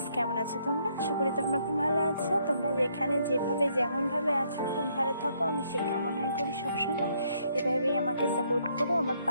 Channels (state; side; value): inverted; both; correlation -0.70